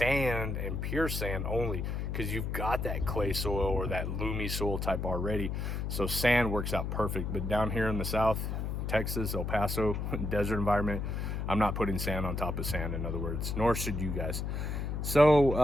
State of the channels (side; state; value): left; noise; hum, 2 dB below the sound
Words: and pure sand only, because you've got that clay soil or that loomy soil type already. So sand works out perfect. But down here in the south, Texas, El Paso, desert environment, I'm not putting sand on top of sand, in other words, nor should you guys.